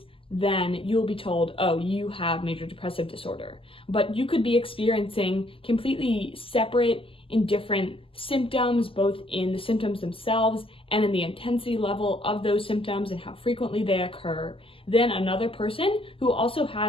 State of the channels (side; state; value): right; late; 0.26 ms